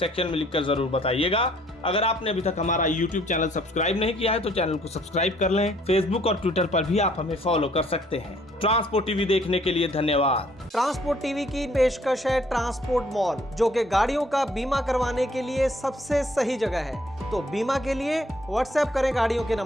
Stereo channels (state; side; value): normal; both; correlation 0.62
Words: में लिखकर जरूर बताइएगा। अगर आपने अभी तक हमारा YouTube चैनल सब्सक्राइब नहीं किया है तो चैनल को सब्सक्राइब कर लें। फेसबुक और ट्विटर पर भी आप हमें फॉलो कर सकते हैं। ट्रांसपोर्ट टीवी देखने के लिए धन्यवाद। ट्रांसपोर्ट टीवी की पेशकश है ट्रांसपोर्ट मॉल, जो कि गाड़ियों का बीमा करवाने के लिए सबसे सही जगह है। तो बीमा के लिए व्हाट्सएप करें गाड़ियों के